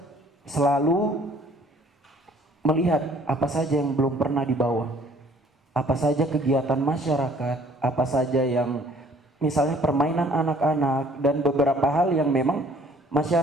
selalu melihat apa saja yang belum pernah dibawa, apa saja kegiatan masyarakat, apa saja yang misalnya permainan anak-anak dan beberapa hal yang memang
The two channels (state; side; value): normal; both; correlation 0.57